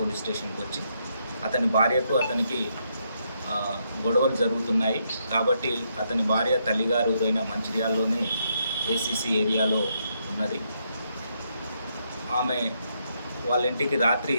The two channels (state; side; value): inverted; both; correlation -0.77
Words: స్టేషన్కి వచ్చి అతని భార్యకు అతనికి గొడవలు జరుగుతున్నాయి కాబట్టి అతని భార్య తల్లిగారు ఊరైన మంచిర్యాలలోనే ఏసీసీ ఏరియాలో ఉన్నది. ఆమె వాళ్ళ ఇంటికి రాత్రి